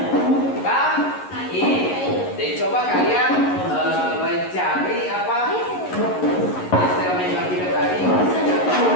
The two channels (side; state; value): right; late; 11 ms